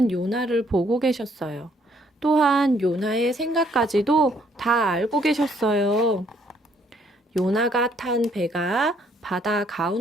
요나를 보고 계셨어요. 또한 요나의 생각까지도 다 알고 계셨어요. 요나가 탄 배가 바다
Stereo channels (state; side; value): normal; both; correlation 0.67